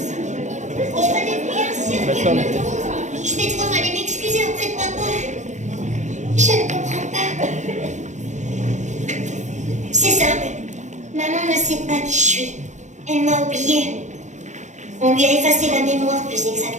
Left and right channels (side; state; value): left; late; 0.34 ms